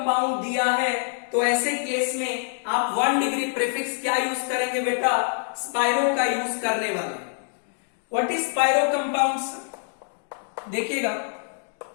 दिया है तो ऐसे केस में आप 1 डिग्री प्रीफिक्स क्या यूज करेंगे बेटा? स्पाइरो का यूज करने वाले। What is spiro compounds? देखिएगा,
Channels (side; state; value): right; silent; digital silence